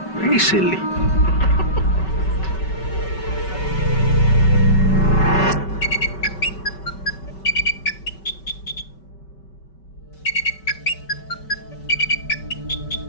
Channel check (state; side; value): late; right; 5.3 ms